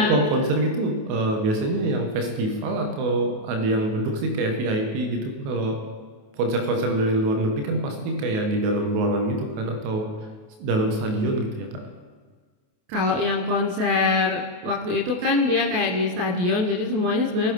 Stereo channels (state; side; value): late; left; 28 ms